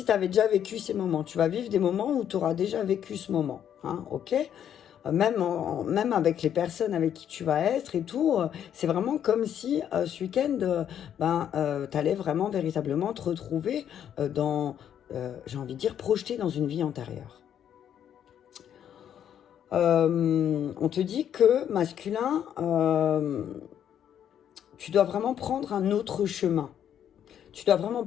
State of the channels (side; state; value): right; quieter; 9.5 dB